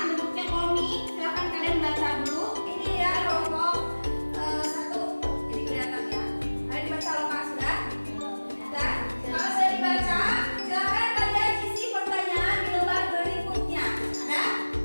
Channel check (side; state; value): both; inverted; correlation -1.00